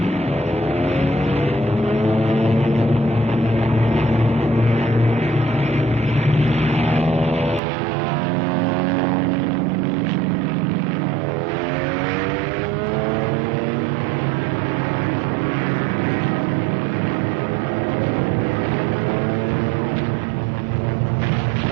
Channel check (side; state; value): left; drops out; at 7.6 s